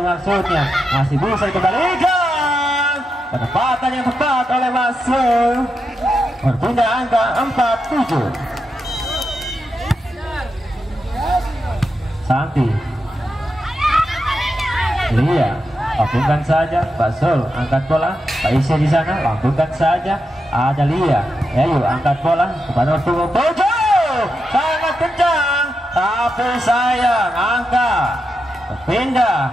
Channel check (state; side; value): normal; both; correlation 0.86